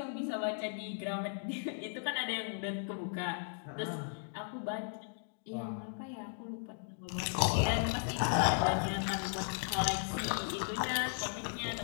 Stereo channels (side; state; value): right; silent; digital silence